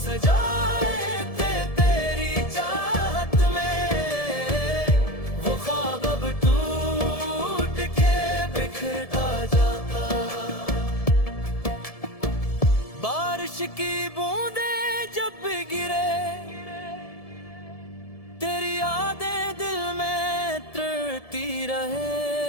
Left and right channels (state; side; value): late; right; 1.7 ms